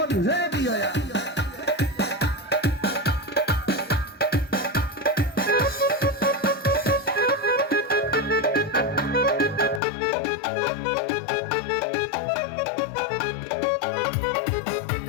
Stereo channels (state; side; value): drops out; right; at 9.8 s